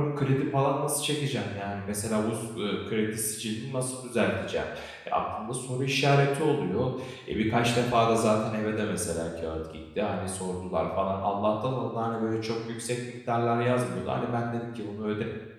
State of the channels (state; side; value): identical; both; correlation 1.00